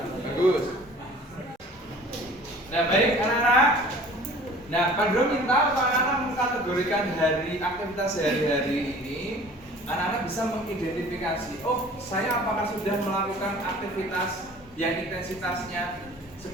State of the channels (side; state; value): both; normal; correlation 0.47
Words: bagus. Nah, baik anak-anak. Nah, Pandro minta anak-anak mengkategorikan hari aktivitas sehari-hari ini. Anak-anak bisa mengidentifikasi, oh saya apakah sudah melakukan aktivitas yang intensitasnya